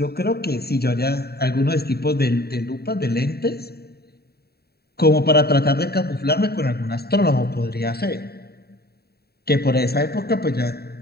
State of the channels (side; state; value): right; late; 0.46 ms